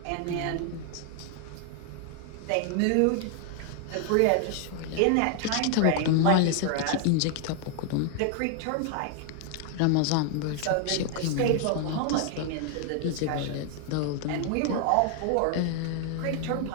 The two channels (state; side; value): different; both; correlation 0.00